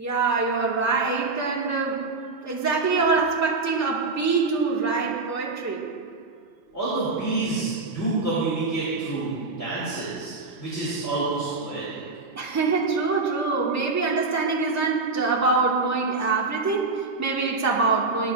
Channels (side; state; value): left; quieter; 3.8 dB